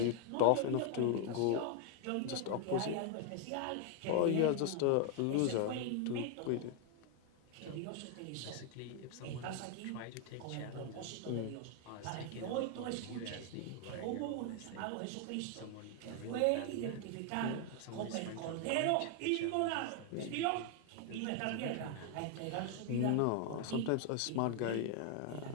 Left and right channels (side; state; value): both; different; correlation 0.00